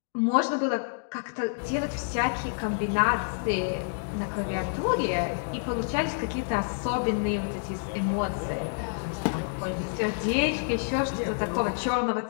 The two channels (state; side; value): silent; right; digital silence